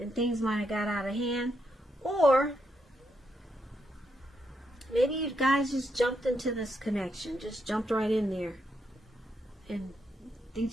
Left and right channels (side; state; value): both; normal; correlation 0.80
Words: things might have got out of hand. Or maybe you guys just jumped into this connection, just jumped right in there, and things